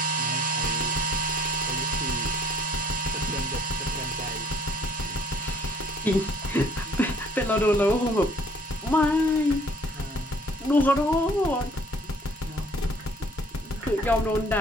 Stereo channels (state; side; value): normal; both; correlation 0.58